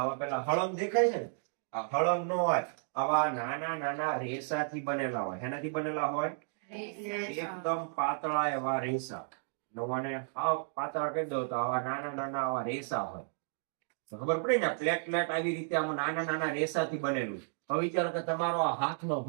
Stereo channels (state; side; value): silent; left; digital silence